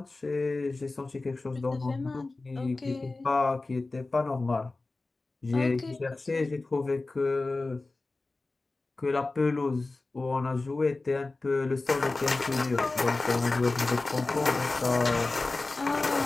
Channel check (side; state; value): right; quieter; 3.4 dB